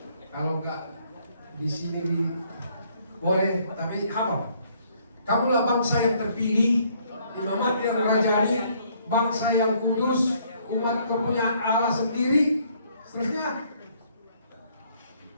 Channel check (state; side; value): inverted; both; correlation -0.66